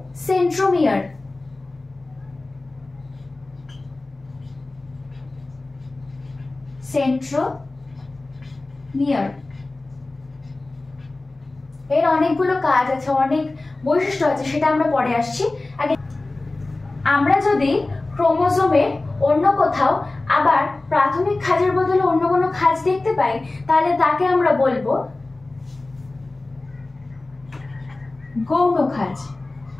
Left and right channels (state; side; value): quieter; right; 3.1 dB